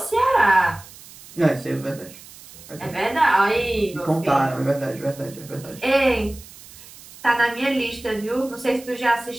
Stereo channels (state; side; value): noise; right; hiss, 19 dB below the sound